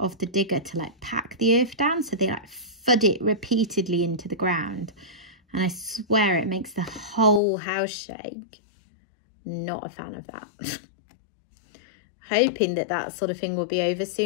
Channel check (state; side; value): drops out; right; at 7.4 s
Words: the digger to like pack the earth down. So they like thud it repeatedly into the ground. And I swear it makes the whole house shake. Not a fan of that. Hoping that that sort of thing will be over